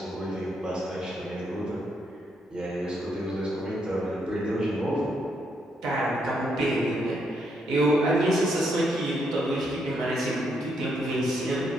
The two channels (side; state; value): both; normal; correlation 0.76